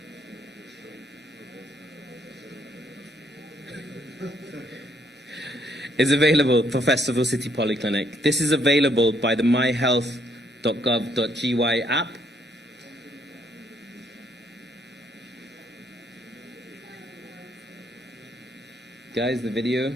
Is available for Festival City Polyclinic. This is available by the myhealth.gov.gy app. Guys, the video.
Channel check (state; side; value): normal; both; correlation 0.70